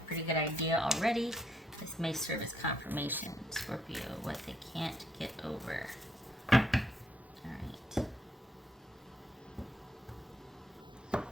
pretty good idea already. This may serve as confirmation. Scorpio, what they can't get over. Alright.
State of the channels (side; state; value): both; normal; correlation 0.73